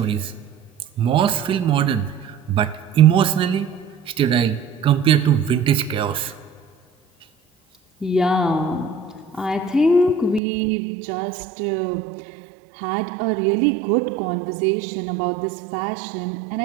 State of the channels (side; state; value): left; drops out; at 10.4 s